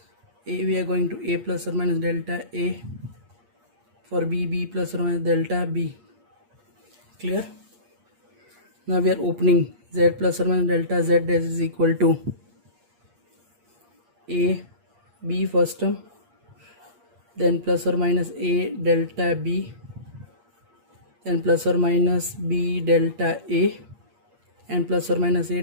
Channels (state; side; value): late; left; 8.5 ms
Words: A, we are going to a plus or minus delta a. For b, b plus or minus delta b. Clear? Now we are opening z plus or minus delta z is equal to a b first term, then plus or minus a delta b, then plus or minus b delta a, and plus or minus a